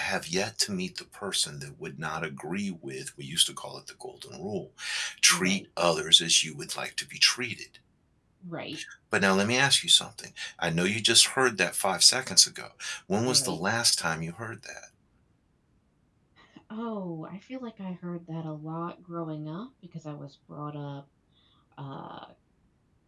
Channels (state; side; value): identical; both; correlation 1.00